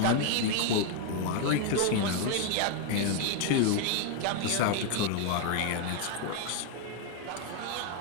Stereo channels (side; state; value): both; different; correlation 0.01